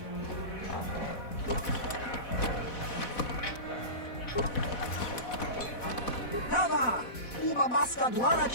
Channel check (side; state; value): right; late; 4.1 ms